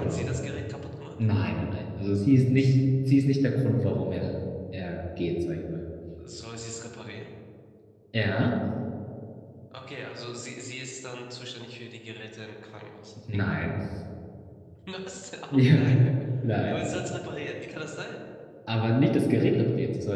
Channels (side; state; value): both; identical; correlation 1.00